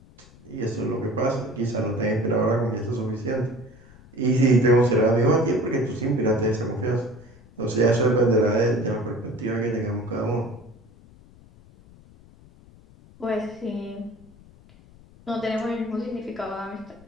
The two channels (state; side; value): noise; left; rumble, 24 dB below the sound